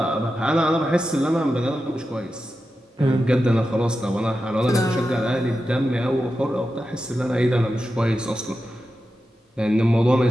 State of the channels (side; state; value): both; normal; correlation 0.91